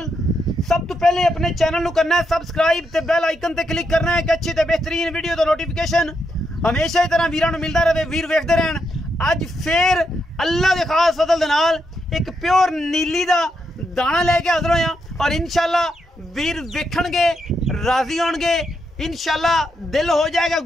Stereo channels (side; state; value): both; normal; correlation 0.81